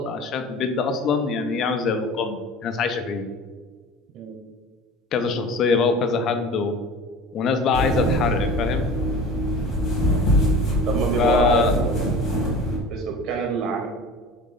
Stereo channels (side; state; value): both; normal; correlation 0.38